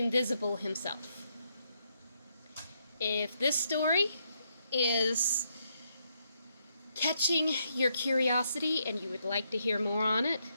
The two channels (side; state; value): both; inverted; correlation -0.77